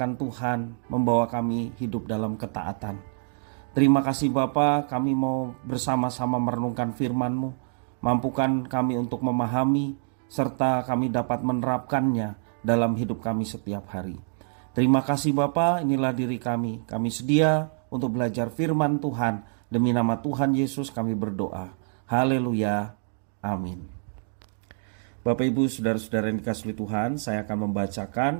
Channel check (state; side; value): silent; left; 59 dB below the other